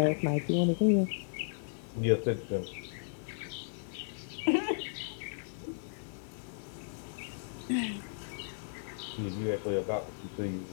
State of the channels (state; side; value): silent; right; digital silence